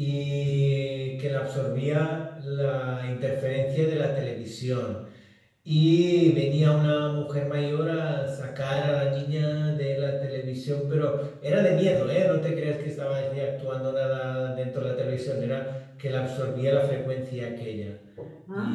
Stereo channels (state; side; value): identical; both; correlation 1.00